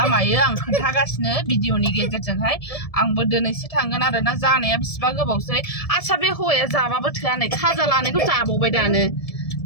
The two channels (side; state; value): right; late; 1.7 ms